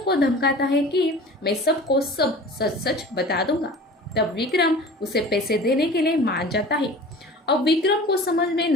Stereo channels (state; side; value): normal; both; correlation 0.40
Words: को धमकाता है कि मैं सबको सब सच सच बता दूंगा। तब विक्रम उसे पैसे देने के लिए मान जाता है। अब विक्रम को समझ में